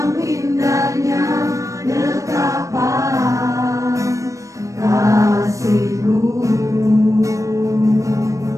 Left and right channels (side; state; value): left; late; 0.16 ms